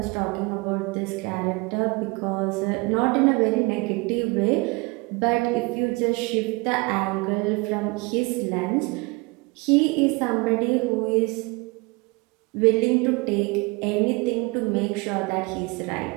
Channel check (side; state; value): left; quieter; 26.9 dB